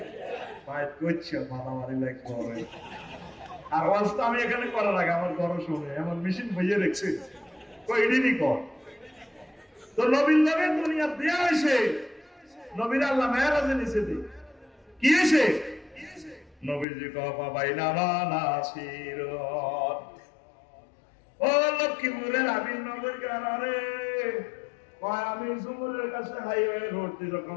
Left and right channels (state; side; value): drops out; right; at 16.9 s